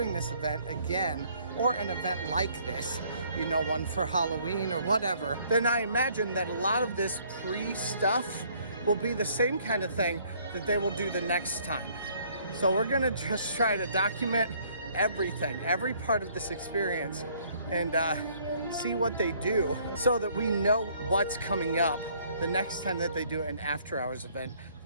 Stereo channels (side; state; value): both; inverted; correlation -0.62